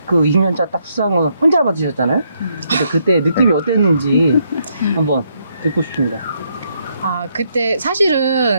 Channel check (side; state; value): both; inverted; correlation -0.75